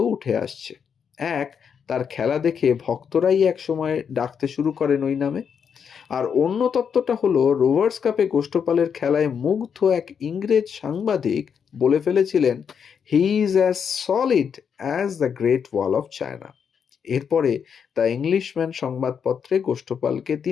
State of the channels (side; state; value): right; quieter; 7.1 dB